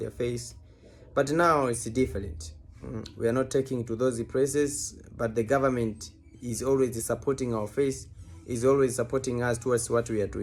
faith. But now it's different. We are not taking to those places, but the government is always supporting our faith, is always supporting us towards what we are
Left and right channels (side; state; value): both; identical; correlation 1.00